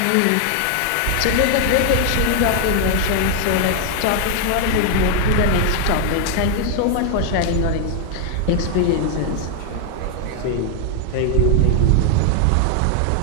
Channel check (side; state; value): both; different; correlation 0.00